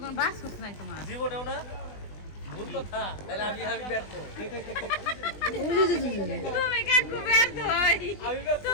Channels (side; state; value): right; late; 20 ms